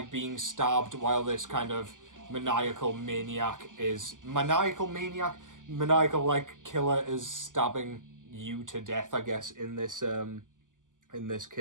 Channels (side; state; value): left; late; 0.88 ms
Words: being stabbed while this kind of maniacal like killer is stabbing you to death, I guess, in this